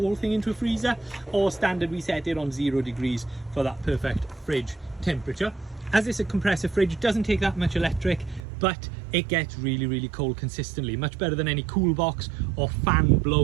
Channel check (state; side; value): drops out; left; at 8.4 s